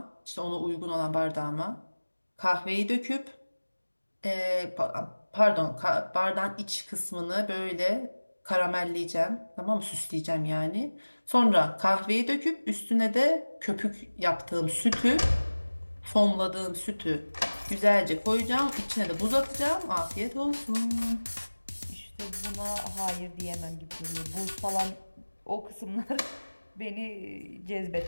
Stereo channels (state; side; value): inverted; both; correlation -1.00